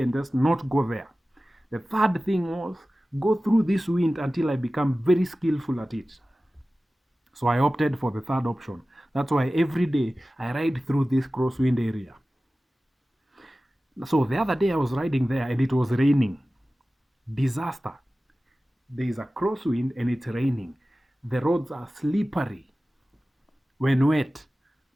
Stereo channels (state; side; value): normal; both; correlation 0.96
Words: and just not go there. The third thing was go through this wind until I become very skillful at it. So I opted for the third option. That's why every day I ride through this crosswind area. So the other day I was riding there and it was raining. Disaster. There is a crosswind and it's raining. The roads are slippery. When wet,